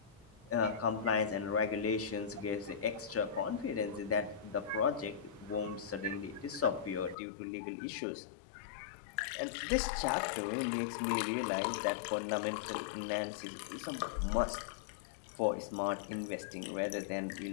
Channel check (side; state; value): right; drops out; at 7.2 s